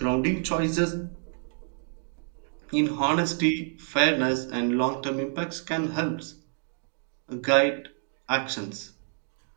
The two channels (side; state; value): left; silent; 59 dB below the other